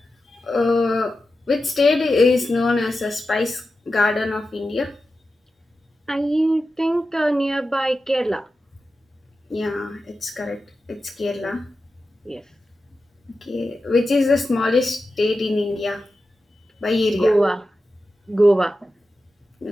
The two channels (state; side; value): normal; both; correlation 0.92